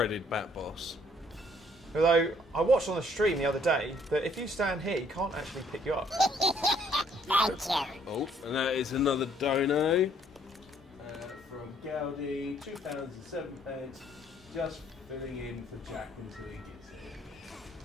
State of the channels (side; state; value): both; normal; correlation 0.64